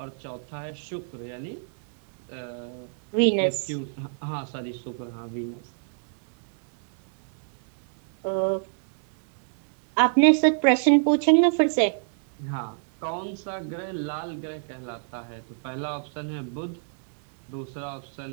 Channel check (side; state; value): left; silent; digital silence